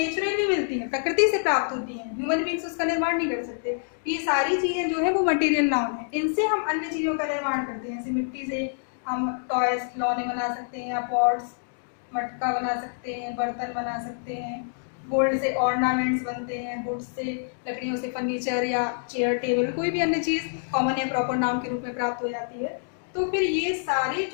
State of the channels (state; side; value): silent; right; digital silence